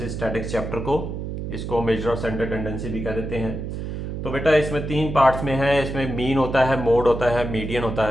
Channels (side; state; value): right; noise; hum, 5 dB below the sound